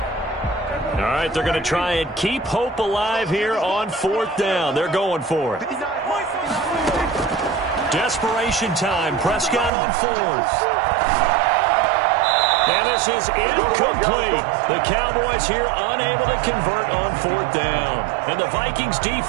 All right, they're going to try and keep hope alive here on 4th down. They're going for it. Desperation time. Prescott on 4th. And this is incomplete. The Cowboys here unable to convert on 4th down. And the Vikings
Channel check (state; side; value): drops out; left; at 9.7 s